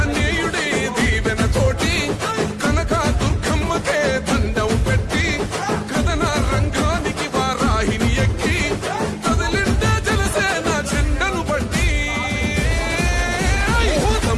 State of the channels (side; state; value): both; identical; correlation 1.00